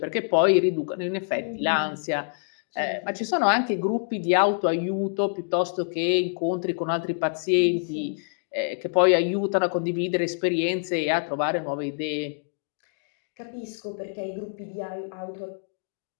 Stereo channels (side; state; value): right; silent; digital silence